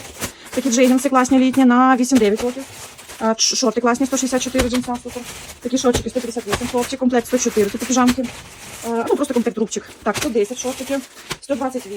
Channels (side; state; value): both; identical; correlation 1.00